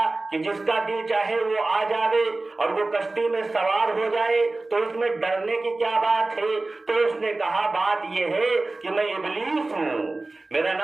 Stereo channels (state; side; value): quieter; left; 3.1 dB